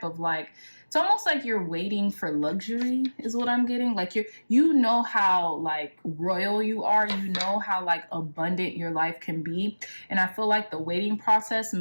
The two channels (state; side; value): inverted; both; correlation -1.00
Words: of like, it's almost like you're waiting for luxury is what I'm getting. Like you know how like royal you are, you know how like abundant your life can be. And I feel like the waiting process